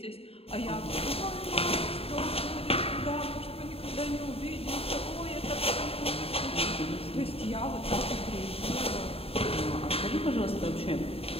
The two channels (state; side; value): late; right; 0.28 ms